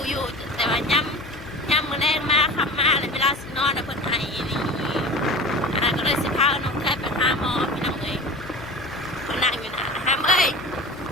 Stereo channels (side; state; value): left; noise; hum, 16 dB below the sound